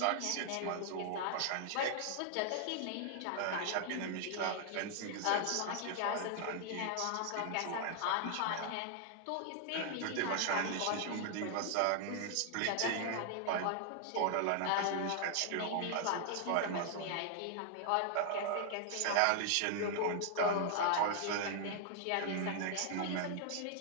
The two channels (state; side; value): different; both; correlation 0.00